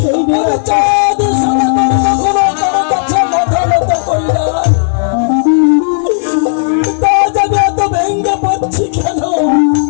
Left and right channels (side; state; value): right; silent; digital silence